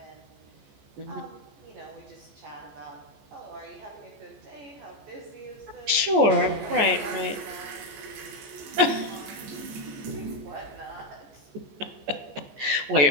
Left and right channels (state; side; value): late; left; 14 ms